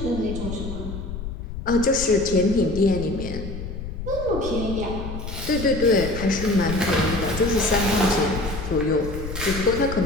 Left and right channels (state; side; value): noise; left; rumble, 7 dB below the sound